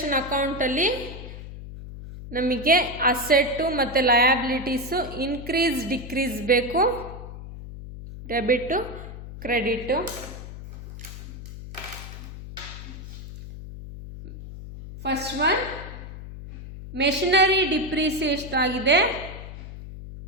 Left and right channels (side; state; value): left; noise; hum, 12 dB below the sound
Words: ಅಕೌಂಟಲ್ಲಿ ನಮಗೆ ಅಸೆಟ್ಟು ಮತ್ತು ಲಯಬಿಲಿಟೀಸು ಇನ್ಕ್ರೀಸ್ ಡಿಕ್ರೀಸ್ ಬೇಕು, debit credit. First one machinery depreciation ಆಗಿದೆ.